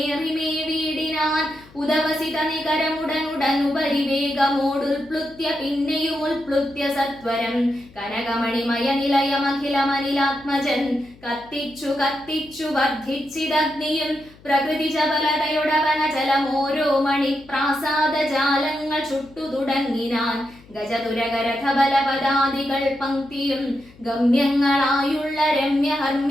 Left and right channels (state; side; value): noise; left; hum, 25 dB below the sound